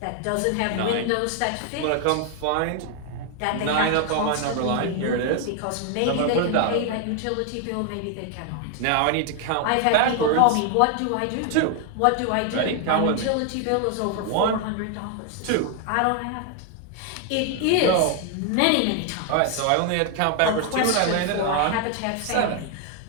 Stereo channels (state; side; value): different; both; correlation 0.01